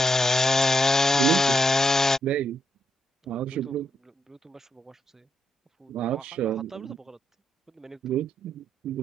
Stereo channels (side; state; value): both; normal; correlation 0.80